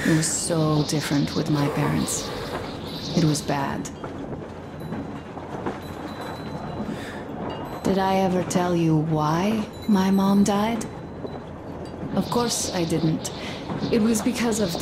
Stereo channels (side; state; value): both; identical; correlation 1.00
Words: It was so different with my parents. It was bad. Did I ever tell you why my mom died? Of course I didn't. It was because of